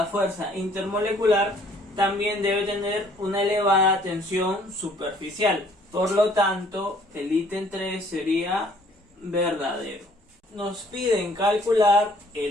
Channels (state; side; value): normal; both; correlation 0.59